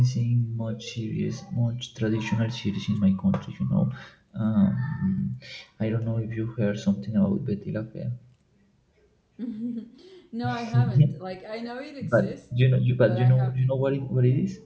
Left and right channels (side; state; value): both; identical; correlation 1.00